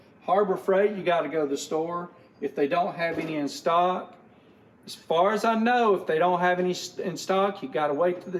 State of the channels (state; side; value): identical; both; correlation 1.00